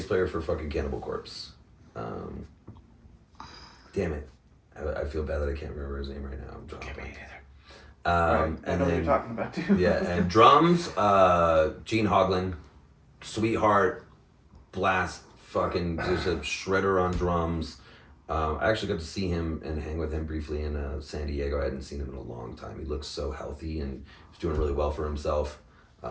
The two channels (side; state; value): both; identical; correlation 1.00